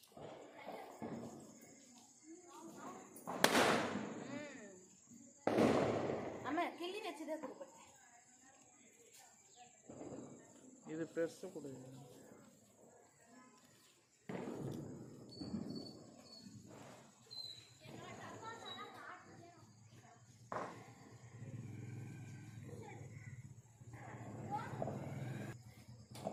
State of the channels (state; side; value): identical; both; correlation 1.00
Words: ஆமா, கிள்ளி வச்சுதான் கொடுப்பேன். இது பெருசு கொடு.